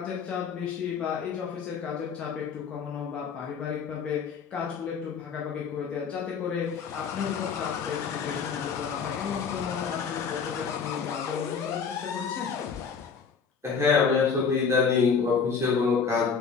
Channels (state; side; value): quieter; right; 6.0 dB